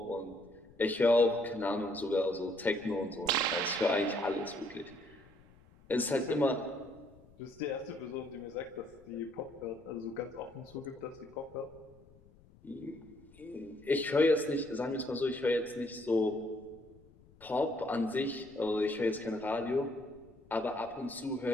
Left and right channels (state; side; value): noise; left; rumble, 26 dB below the sound